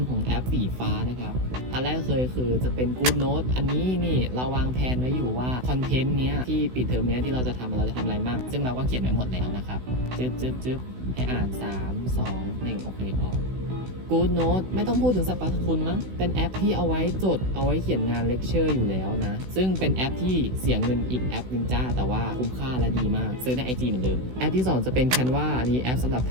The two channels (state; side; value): late; left; 16 ms